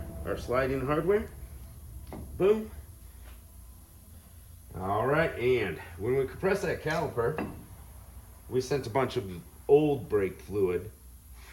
our sliding hardware. Boom. All right, and when we compress that caliper, we sent a bunch of old brake fluid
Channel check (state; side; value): identical; both; correlation 1.00